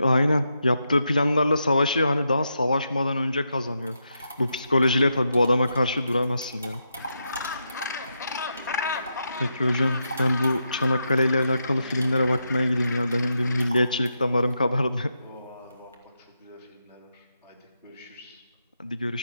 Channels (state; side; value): inverted; both; correlation -0.84